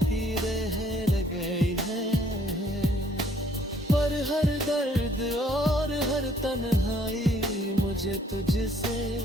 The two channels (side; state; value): both; normal; correlation 0.63